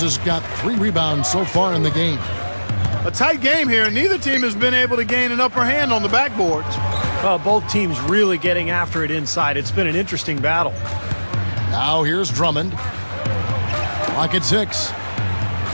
has got 3 rebounds so far in the game. A tight game here, and neither team has been able to gain an upper hand on the backboards. Well, both teams really getting after it inside. It's been an interesting battle. Now here's Drummond. Clock at 6.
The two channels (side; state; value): both; inverted; correlation -1.00